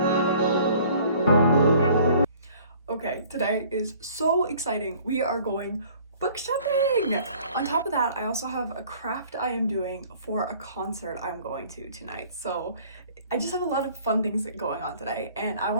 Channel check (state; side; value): inverted; both; correlation -0.53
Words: Okay, today is so exciting. We are going book shopping! On top of that, I also have a craft I am doing for a concert I'm going to tonight. So I just have a lot of fun things going on today, and I